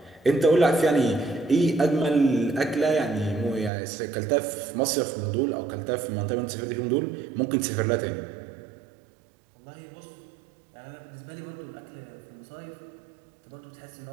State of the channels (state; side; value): drops out; left; at 3.7 s